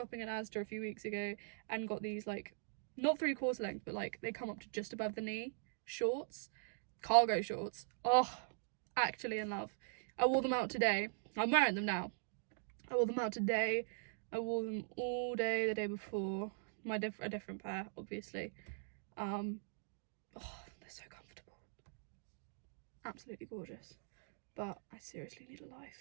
in Asda a few weeks ago and got these, like, not 3/4 length, but like they come up to just above the knee shorts, cargo shorts. Oh, actually in love. I wore them out today. I'm wearing them now. I wore them out today. I wore them all day the day before. A different pair, obviously. Oh, they're so comfortable. Absolutely gorgeous. But I seriously need a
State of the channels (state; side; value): silent; left; digital silence